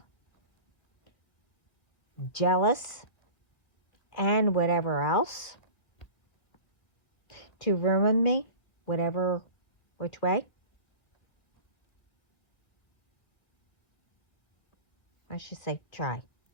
jealous and whatever else to ruin me, which way. I should say try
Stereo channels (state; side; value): late; right; 2.0 ms